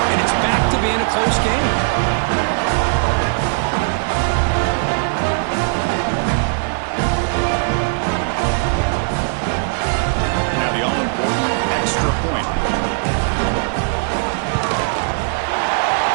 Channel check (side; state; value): left; silent; digital silence